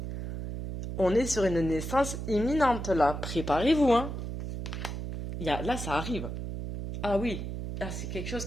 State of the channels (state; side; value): noise; right; hum, 6 dB below the sound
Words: On est sur une naissance imminente là. Préparez-vous, hein. Là, ça arrive. Ah oui. Ah, c'est quelque chose